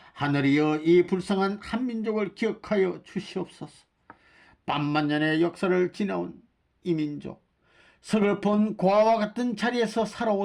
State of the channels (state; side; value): identical; both; correlation 1.00